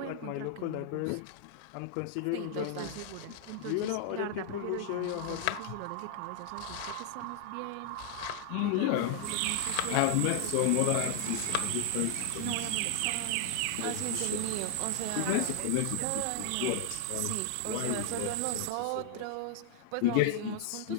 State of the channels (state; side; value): different; both; correlation 0.00